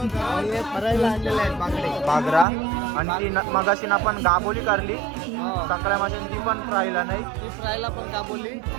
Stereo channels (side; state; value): left; drops out; at 2.5 s